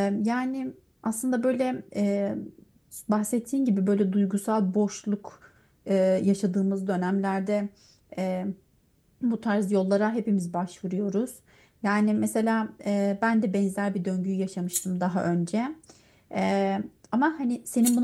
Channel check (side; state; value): both; identical; correlation 1.00